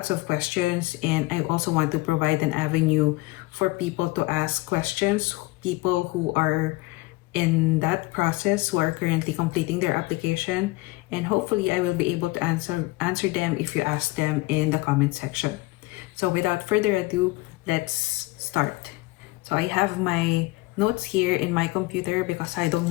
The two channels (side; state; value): right; quieter; 21.6 dB